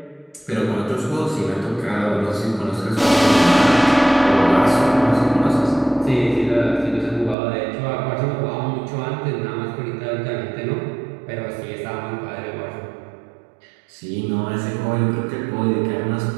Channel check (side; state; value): left; drops out; at 7.4 s